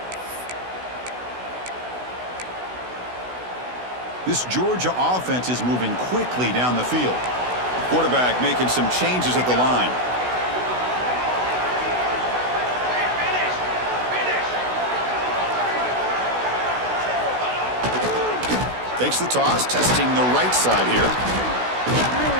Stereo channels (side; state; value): left; late; 16 ms